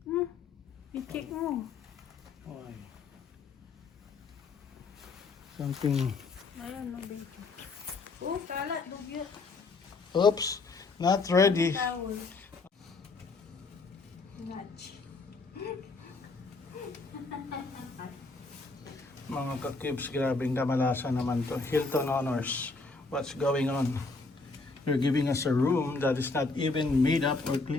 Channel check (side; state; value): right; quieter; 3.8 dB